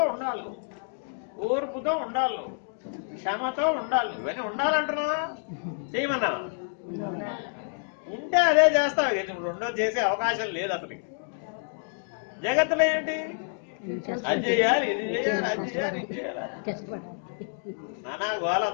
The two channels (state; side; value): silent; right; digital silence